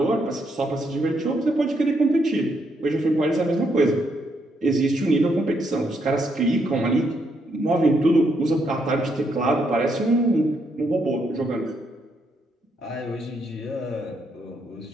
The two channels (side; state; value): both; normal; correlation 0.76